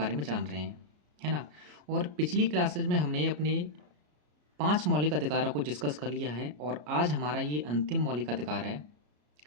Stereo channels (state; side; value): late; left; 33 ms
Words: में जान रहे हैं, है ना। और पिछली क्लासेज में हमने अपने 5 मौलिक अधिकारों को डिस्कस कर लिया है और आज हमारा ये अंतिम मौलिक अधिकार है,